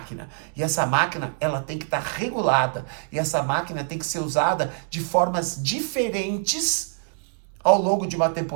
E essa máquina, ela tem que estar regulada. E essa máquina tem que ser usada de formas diferentes ao longo de uma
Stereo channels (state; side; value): silent; left; 62 dB below the other